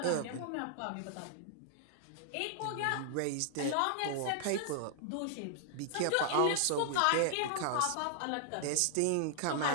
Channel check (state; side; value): different; both; correlation -0.01